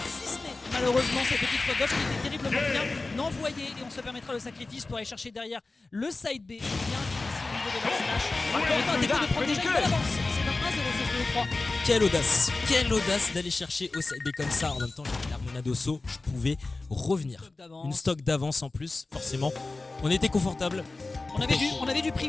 Malheureusement cette petite faute gauche qui était terriblement bien envoyée et on se permettra le sacrifice pour aller chercher derrière le side B. Bien ici au niveau de la slash. On va Teco de prendre déjà une belle avance. C'est un 1-0 sur le 3. Quelle audace d'aller chercher au side B comme ça. En même temps, j'avais l'Armonado saut, je pouvais revenir. Une stock d'avance en plus, forcément. On était confortable. On avait du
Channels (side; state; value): right; quieter; 3.4 dB